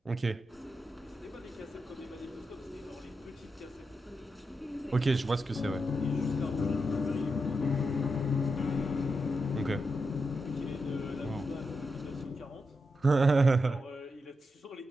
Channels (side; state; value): both; normal; correlation 0.86